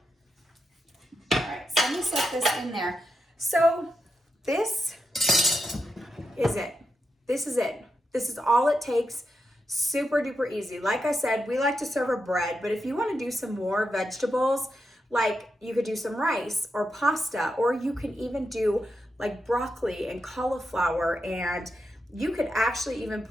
All right, so let me set this in there. So this is it. This is it. This is all it takes. Super duper easy. Like I said, we like to serve a bread, but if you want to do some more vegetables, like you could do some rice or pasta, or you can even do like broccoli and cauliflower, and you could actually even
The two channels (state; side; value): normal; both; correlation 0.86